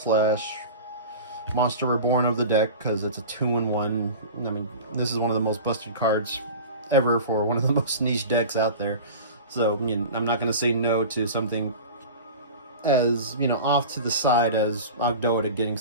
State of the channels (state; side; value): inverted; both; correlation -0.33